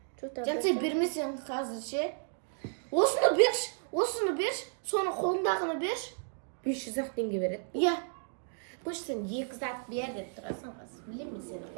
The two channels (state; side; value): silent; left; digital silence